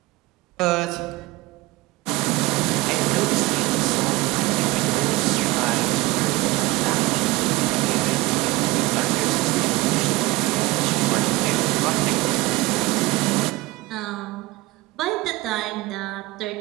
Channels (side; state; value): left; quieter; 20.8 dB